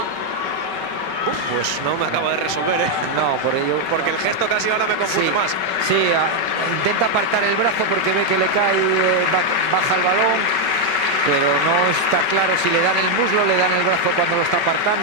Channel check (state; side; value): late; left; 5.3 ms